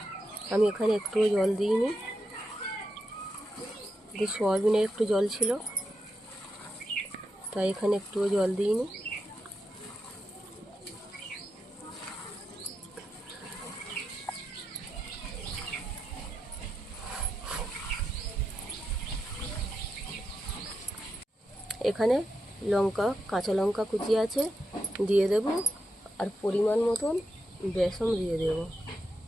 আমি এখানে একটুও জল দিইনি, যে সোয়াবিনে একটু জল ছিল তাই এখানে একটুও জল দিইনি। এখানে কাঁচা লঙ্কা কুচি আছে, দিয়ে দেব। আর পরিমাণ মতন বেসন দিয়ে দেব।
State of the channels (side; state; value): both; normal; correlation 0.86